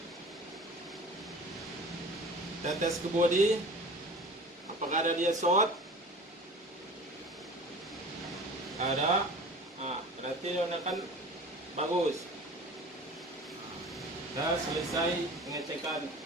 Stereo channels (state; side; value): normal; both; correlation 0.40